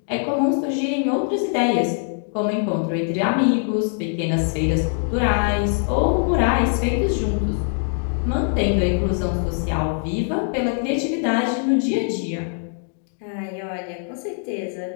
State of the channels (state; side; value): silent; right; 57 dB below the other